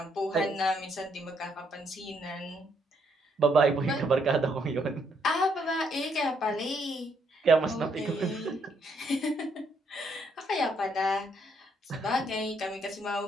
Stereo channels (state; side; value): normal; both; correlation 0.72